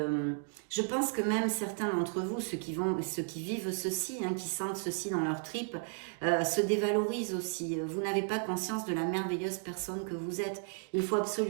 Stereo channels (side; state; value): left; silent; 55 dB below the other